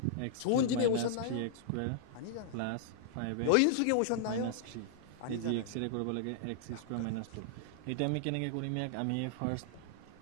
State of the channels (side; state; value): both; different; correlation -0.01